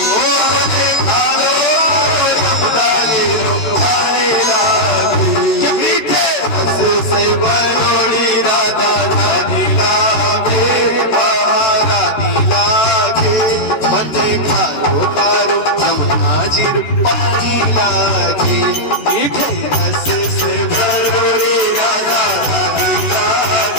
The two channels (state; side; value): late; right; 13 ms